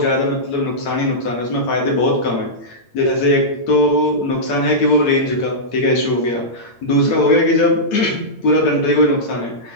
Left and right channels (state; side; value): late; right; 8.8 ms